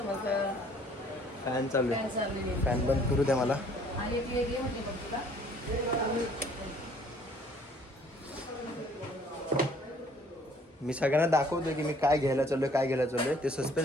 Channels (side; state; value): both; normal; correlation 0.59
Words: फॅन चालू आहे. फॅन बंद करू द्या मला. मी सगळ्यांना दाखवतो की मी काय घ्यायला चाललोय ते